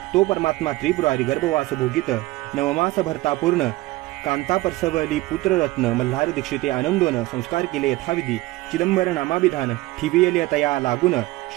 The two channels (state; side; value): quieter; left; 19.5 dB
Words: तो परमात्मा त्रिपुरारी गर्भवास भोगित. 9 मास भरता पूर्ण कांता परसवली पुत्ररत्न. मल्हार दीक्षिते आनंदोन संस्कार केले यथाविधी. चिदंबर नामाभिधान ठिवियले तया लागून.